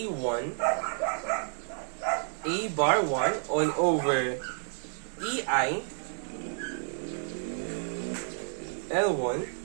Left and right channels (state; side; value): silent; left; digital silence